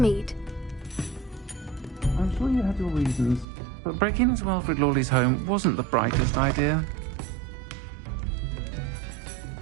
I'm sure you had your reasons, but breaking into Wilfred Lawley's home wasn't the brightest idea.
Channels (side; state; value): left; drops out; at 3.5 s